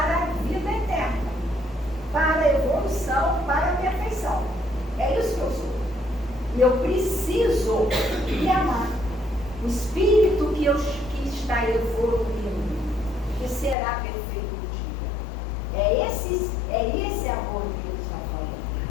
a vida eterna, para a evolução, para a perfeição. É isso que eu sou. E eu preciso me amar. O Espírito que está evoluindo, que será perfeito um dia. É esse amor que ele está falando.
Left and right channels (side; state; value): right; drops out; at 13.8 s